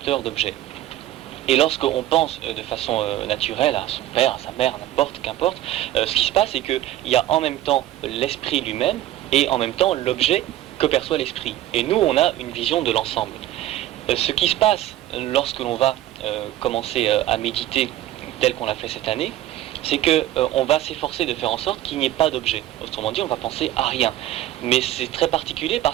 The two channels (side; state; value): left; quieter; 14.0 dB